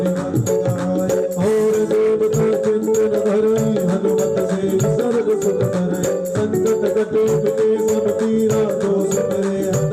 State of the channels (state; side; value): identical; both; correlation 1.00